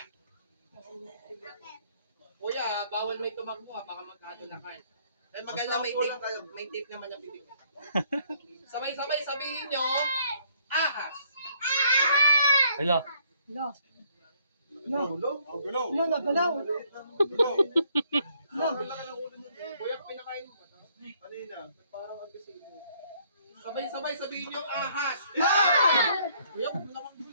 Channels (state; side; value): inverted; both; correlation -0.66